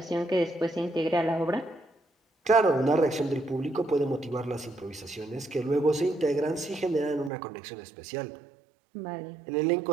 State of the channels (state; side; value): drops out; left; at 7.3 s